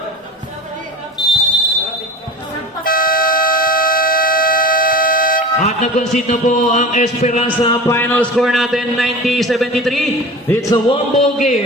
At nag-concede na po ang Esperanza. Final score natin 90-73. It's a one-ball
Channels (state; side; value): normal; both; correlation 0.35